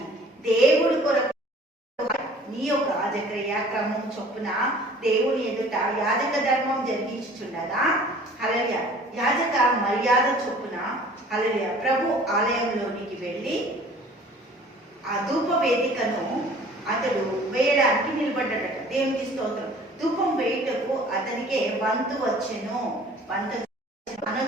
దేవుడి కొరకు నీ యొక్క జకరియా క్రమం చొప్పున దేవుని ఎదుట యాజక ధర్మం జరిగించుచుండగా, హల్లెలూయా, యాజక మర్యాద చొప్పున హల్లెలూయా ప్రభు ఆలయంలోనికి వెళ్ళి ఆ ధూప వేదికను అతడు వేయడానికి నిలబడ్డాడట. దేవునికి స్తోత్రం. ధూపం వేయుటకు అతనికే వంతు వచ్చెను. వంతు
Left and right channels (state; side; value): normal; both; correlation 0.50